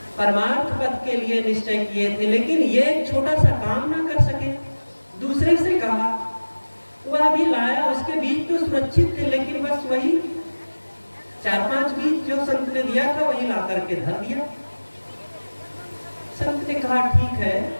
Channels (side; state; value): both; inverted; correlation -1.00